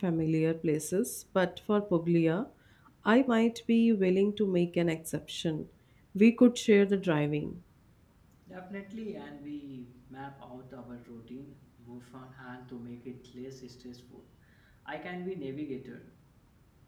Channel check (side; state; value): both; identical; correlation 1.00